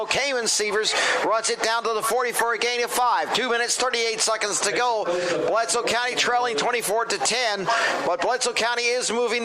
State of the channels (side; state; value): both; identical; correlation 1.00